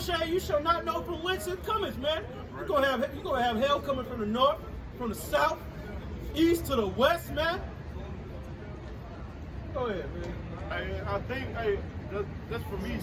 shall you shall not know from whence it cometh, man. You're gonna have hell coming from the north, from the south, east to the west, man. Go ahead, man. Hey, I think, that's for me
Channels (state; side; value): identical; both; correlation 1.00